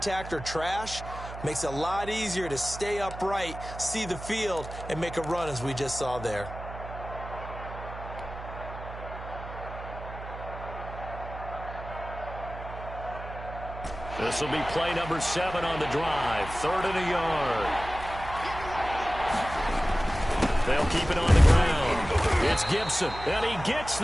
or trash, makes it a lot easier to stay upright, see the field, and make a run as we just saw there. This will be play number 7 on the drive. 3rd and a yard. They'll keep it on the ground. It's Gibson, and he gets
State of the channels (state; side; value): noise; right; hum, 11 dB below the sound